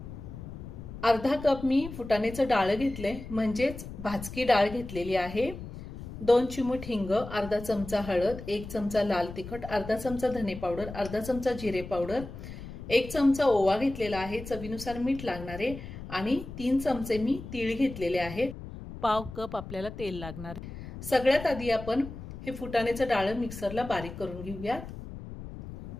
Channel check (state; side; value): noise; left; rumble, 11 dB below the sound